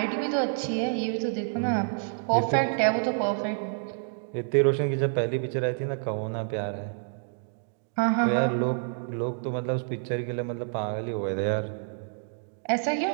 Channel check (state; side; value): silent; left; digital silence